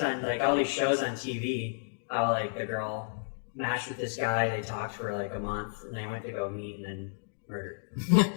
like all these shows on TV. How like the girl matched with this guy, they talked for like a month, and they went to go meet and then murdered.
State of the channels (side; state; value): right; silent; digital silence